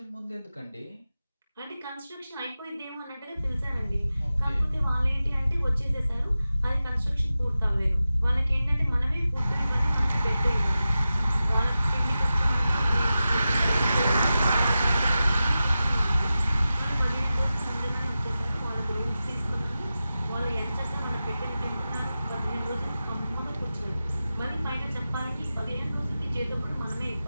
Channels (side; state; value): both; inverted; correlation -0.93